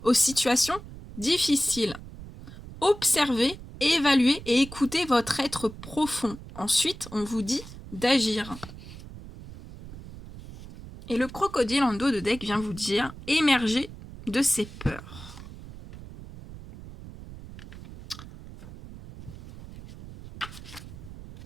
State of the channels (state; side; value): noise; right; rumble, 15 dB below the sound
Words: aux situations difficiles. Observez, évaluez et écoutez votre être profond. Ensuite, on vous dit d'agir. Et le crocodile en dos de deck vient vous dire émerger de ses peurs.